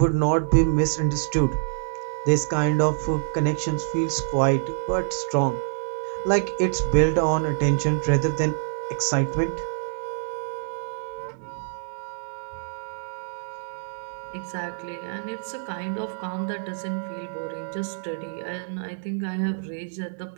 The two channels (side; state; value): left; silent; digital silence